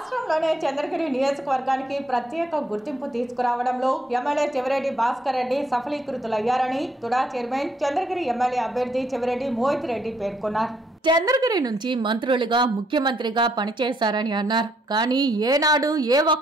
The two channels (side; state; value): both; normal; correlation 0.72